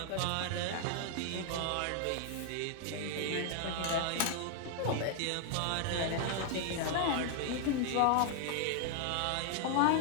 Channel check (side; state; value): both; different; correlation 0.00